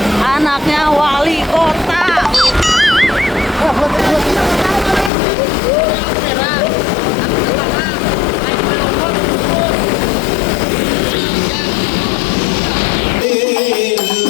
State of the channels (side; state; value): right; drops out; at 5.1 s